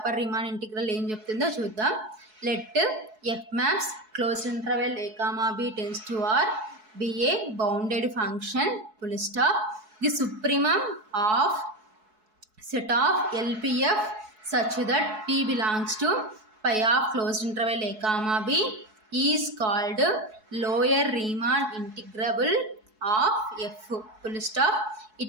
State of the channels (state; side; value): late; left; 4.7 ms